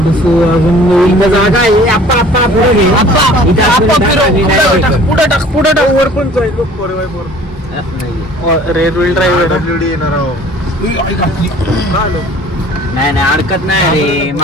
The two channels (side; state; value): both; normal; correlation 0.49